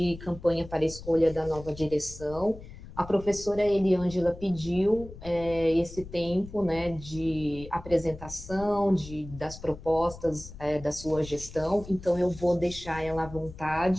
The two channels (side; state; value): left; noise; rumble, 15 dB below the sound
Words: campanha para a escolha da nova direção. A professora Eliângela pediu esse tempo, né, de apresentação das propostas da sua gestão, então eu vou deixar ela à